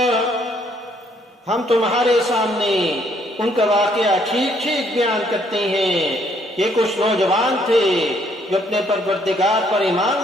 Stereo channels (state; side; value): normal; both; correlation 0.67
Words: हम तुम्हारे सामने उनका वाकया ठीक ठीक बयान करते हैं। ये कुछ नौजवान थे जो अपने परवरदिगार पर ईमान